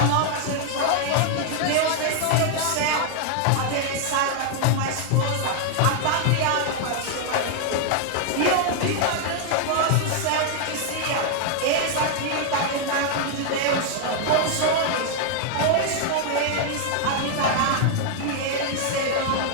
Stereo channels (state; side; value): different; both; correlation 0.00